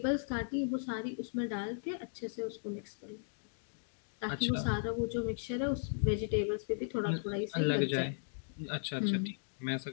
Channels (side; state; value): right; silent; digital silence